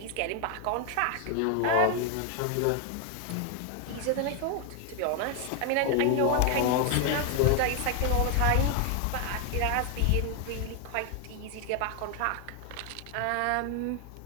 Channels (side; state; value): both; different; correlation 0.00